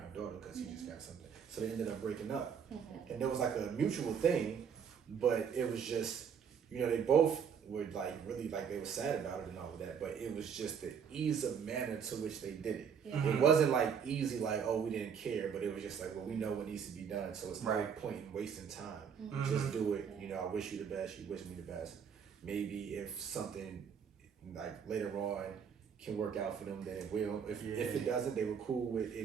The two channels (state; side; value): quieter; left; 7.1 dB